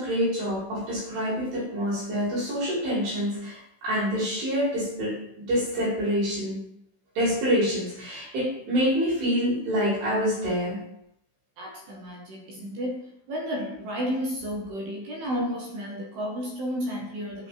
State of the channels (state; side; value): late; left; 16 ms